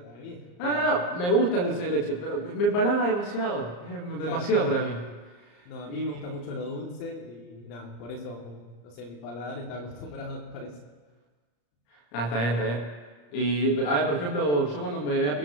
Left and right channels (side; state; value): right; late; 34 ms